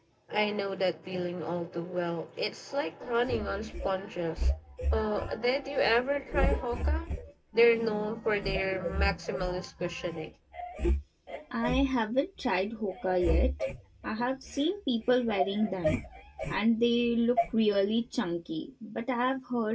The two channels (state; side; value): identical; both; correlation 1.00